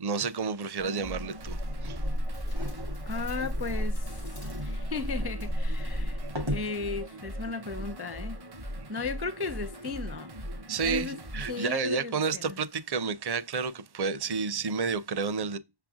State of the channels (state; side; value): late; left; 1.1 ms